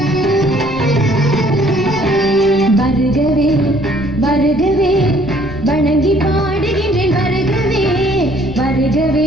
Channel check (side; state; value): left; noise; rumble, 13 dB below the sound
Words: வருகவே வருகவே வணங்கி